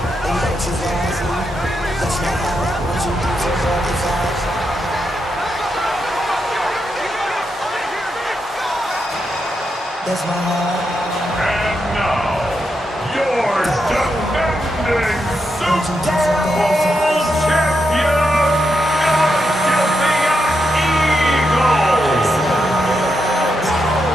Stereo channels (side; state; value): both; normal; correlation 0.84